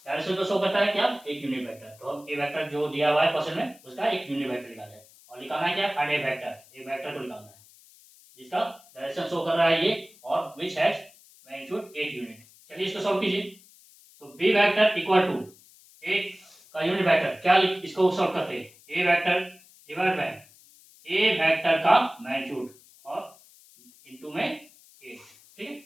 डायरेक्शन को शो करता है क्या एक यूनिट वेक्टर। तो हम ए वेक्टर जो दिया हुआ है क्वेश्चन में उसका एक यूनिट वेक्टर निकालना है और निकालना है क्या find A vector, a vector को निकालना है जिसका डायरेक्शन शो कर रहा है ये और विच हैज मैग्नीट्यूड 8 यूनिट। चलिए इसको सॉल्व कीजिए। तो b vector equal to a का यूनिट वेक्टर, क्या इसको सॉल्व करते हैं ए vector divide by a vector का मैग्नीट्यूड और इनटू में 8, ठीक है।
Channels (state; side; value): noise; left; hiss, 25 dB below the sound